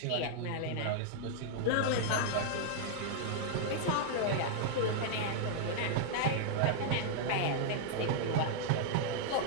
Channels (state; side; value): different; both; correlation -0.01